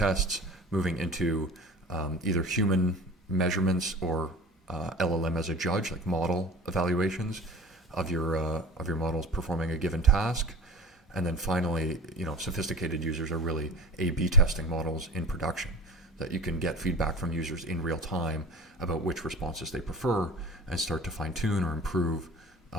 moving into either human measurements or LLM as a judge, like model evaluations of your models performing a given task. And then finally, sophisticated users are really A/B testing models in production, that you can get feedback from users in real time about which responses they prefer and start to fine tune or improve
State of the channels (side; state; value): both; normal; correlation 0.39